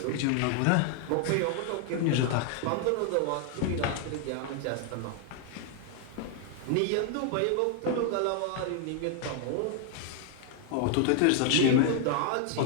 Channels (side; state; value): both; different; correlation 0.00